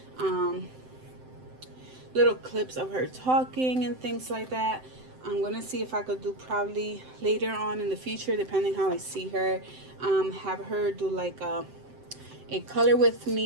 little clips of her talking and things like that. I'm gonna see if I could do probably later on in the future, depending how I see her, have her do like a color with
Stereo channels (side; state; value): left; late; 7.8 ms